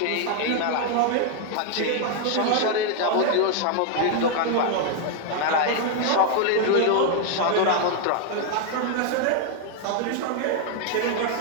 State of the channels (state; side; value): different; both; correlation 0.00